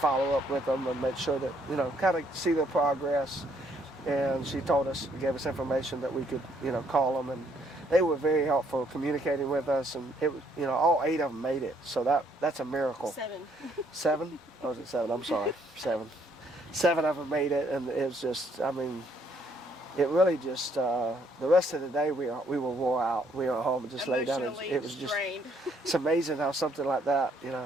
follow up with them and make sure that, kind of see their progress. And she told us, gave us information that we could, call them, and they were very helpful communicating with us, and it was, all 8 of them made it. So that's a miracle. 7. 7? Oh, was it 7? I'm sorry. 7. 7 of them made it, and it was just, it really just, the rest of the day we were wore out. We were at home and just lay down. It was just, it's amazing how something like that,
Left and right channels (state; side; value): normal; both; correlation 0.68